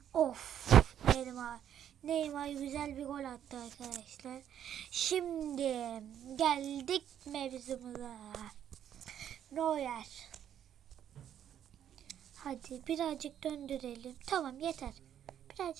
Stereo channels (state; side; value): quieter; left; 10.0 dB